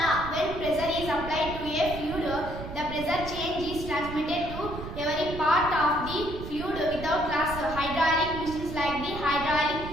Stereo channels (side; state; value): right; noise; rumble, 9 dB below the sound